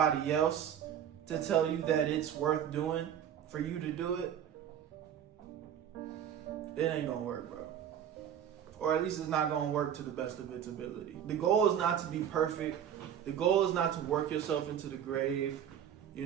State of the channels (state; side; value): quieter; left; 9.4 dB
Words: else to tell you that it's worth doing for you to do it. It ain't going to work, bro. Or at least it's not going to work to the best of its ability. The goal is not to be perfect. The goal is not to work yourself into the grave, you